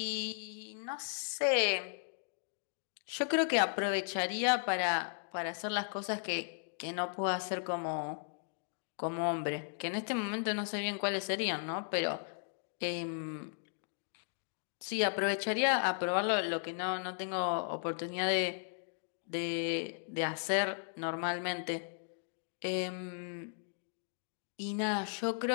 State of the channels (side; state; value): right; silent; digital silence